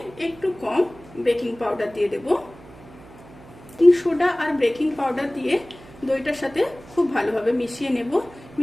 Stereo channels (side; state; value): right; noise; hum, 21 dB below the sound